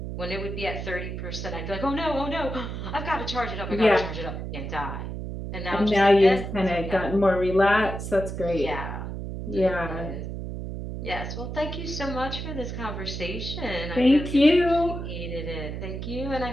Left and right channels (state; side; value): noise; right; hum, 6 dB below the sound